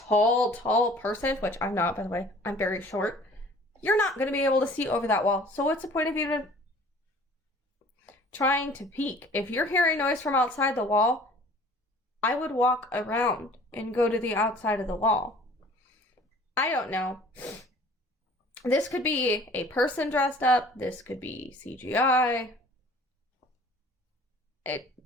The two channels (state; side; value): normal; both; correlation 0.50